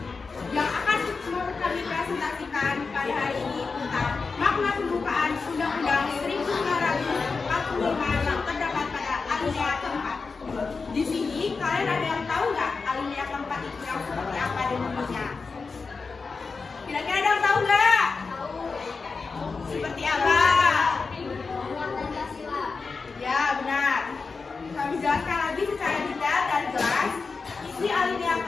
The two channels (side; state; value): right; quieter; 4.5 dB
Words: Yang akan kami presentasikan pada hari ini tentang makna pembukaan Undang-Undang 1945 yang terdapat pada alinea keempat. Di sini kalian ada yang tahu nggak alinea keempat itu yang seperti apa dan bunyinya? Kira-kira ada yang tahu nggak? Seperti apa? Ya benar. Kami jelaskan lagi secara detail dan jelas isi alinea